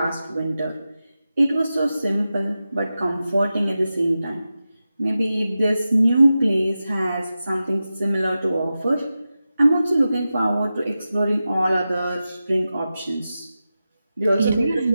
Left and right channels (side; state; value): both; inverted; correlation -0.93